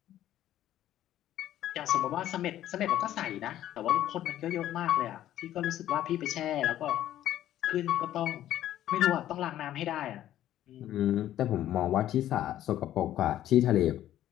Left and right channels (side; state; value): right; quieter; 12.6 dB